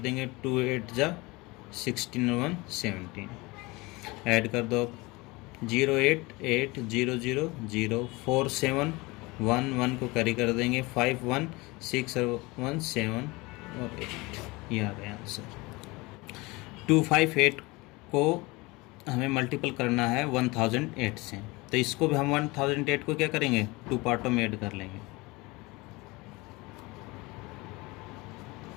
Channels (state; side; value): quieter; right; 23.6 dB